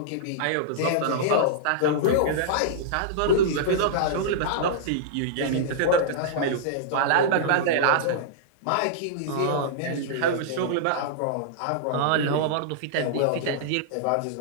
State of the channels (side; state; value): both; different; correlation -0.02